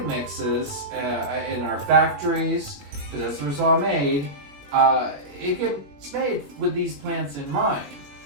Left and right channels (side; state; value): left; late; 21 ms